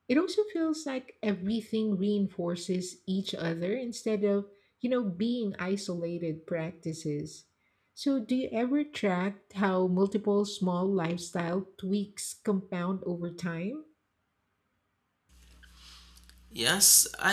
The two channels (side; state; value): both; identical; correlation 1.00